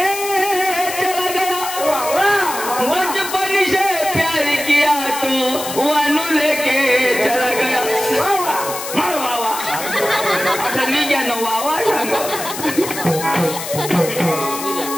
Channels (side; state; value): left; noise; hiss, 8 dB below the sound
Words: चला गया बचपन से प्यार किया तो वानू लेके चला गया मार बाबा आता मी क्या नो बाबा सांगो